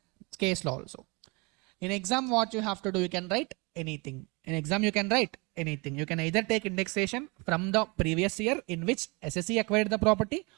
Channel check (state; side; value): quieter; left; 28.6 dB